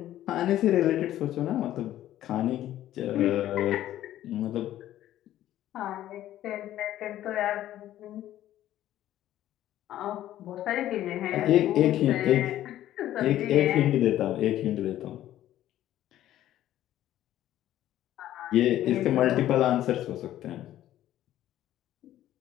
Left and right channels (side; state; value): right; quieter; 13.0 dB